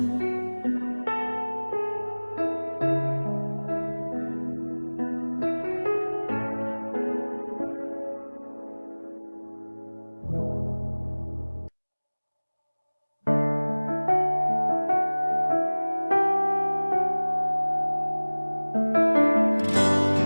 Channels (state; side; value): inverted; both; correlation -1.00